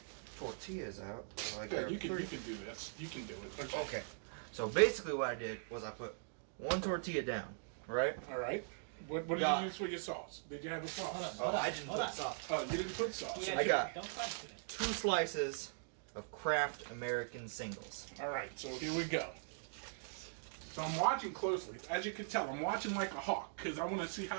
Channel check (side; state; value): left; silent; digital silence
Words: tortillas out. Yeah, you can do this. You can do it. Okay. So basically what I did was I put one tortilla down, right? All right. What did you use for your sauce? Did you have a sauce? Oh, I didn't put sauce. Oh, you didn't put sauce. Yeah, I got don't question it. 2 slices of Kraft American singles. All right, so here we go. So I'm watching closely. As you can tell, I'm watching like a hawk because I want to see